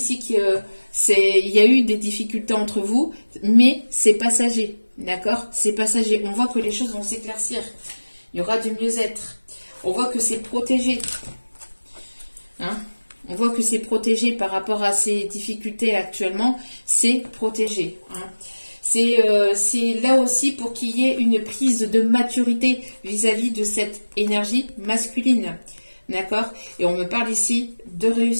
qu'il y a eu des difficultés entre vous, mais c'est passager, d'accord? C'est passager. On voit que les choses vont s'éclaircir. Il y aura du mieux-être. On voit que c'est protégé. Hein? On voit que c'est protégé par rapport à ces difficultés actuellement. C'est protégé. Hein. C'est là aussi pour qu'il y ait une prise de maturité vis-à-vis de cette énergie masculine. D'accord? Et on me parle ici de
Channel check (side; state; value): both; inverted; correlation -1.00